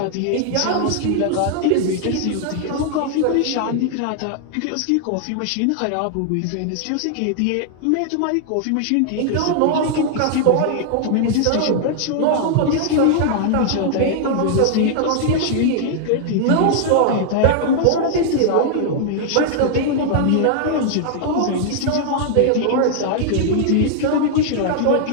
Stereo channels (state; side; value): different; both; correlation -0.01